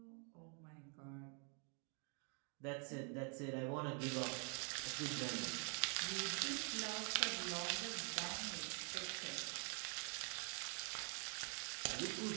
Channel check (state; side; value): quieter; left; 39.8 dB